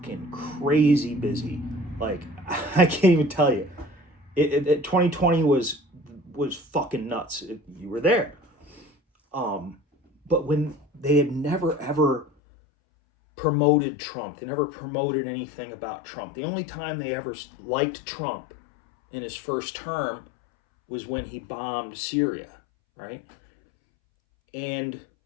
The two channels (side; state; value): right; drops out; at 12.3 s